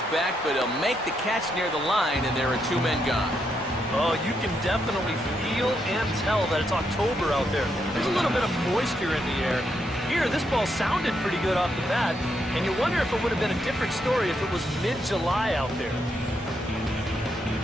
back, but he'll make the catch near the line, and there are two men gone. Oh, you can definitely feel and tell that it's October out there. There's a little bit of moisture in the air. Here, this ball sounded pretty good off the bat, and you wonder if it would have been a different story if it was mid-July out there.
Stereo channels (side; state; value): both; normal; correlation 0.79